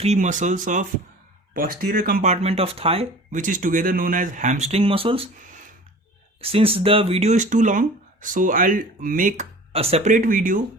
muscles of posterior compartment of thigh, which is together known as hamstring muscles. Since the video is too long, so I'll make a separate video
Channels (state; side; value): normal; both; correlation 0.42